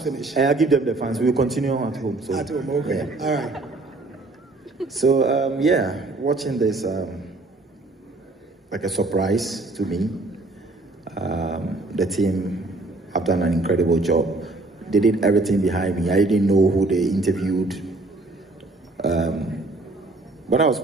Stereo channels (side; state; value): left; quieter; 3.1 dB